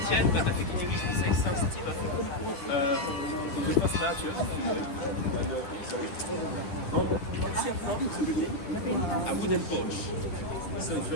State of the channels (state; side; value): late; right; 10 ms